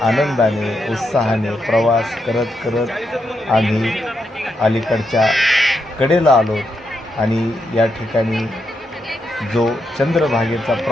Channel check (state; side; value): normal; both; correlation 0.82